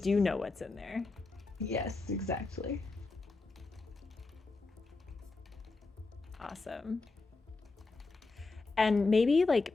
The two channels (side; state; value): right; quieter; 3.7 dB